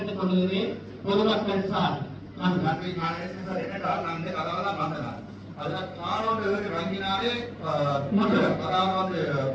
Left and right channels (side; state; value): both; identical; correlation 1.00